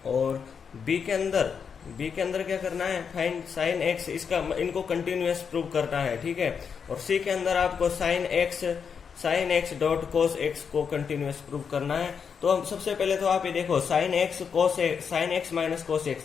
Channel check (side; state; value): right; quieter; 6.5 dB